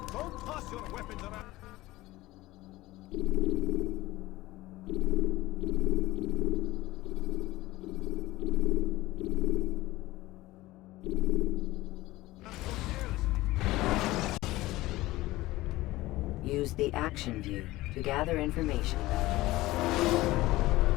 Don't toss your weapons around. Use the action view to gather information about you.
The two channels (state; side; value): quieter; right; 18.2 dB